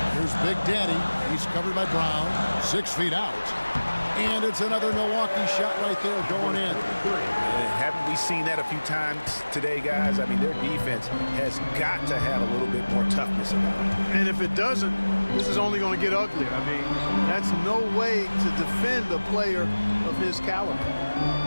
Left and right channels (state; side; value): inverted; both; correlation -1.00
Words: Here's Big Daddy. He's covered by Brown. 6 feet out. And it's another Milwaukee shot right there going in. Haven't we seen that a few times today, guys? I mean, their defense has got to have a little bit more toughness about it. And if it doesn't, this is only going to get uglier. I mean, that's no way to defend a player of his caliber.